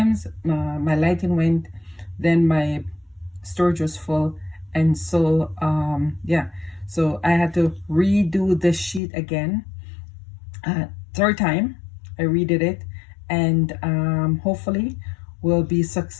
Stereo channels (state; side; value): drops out; right; at 9.0 s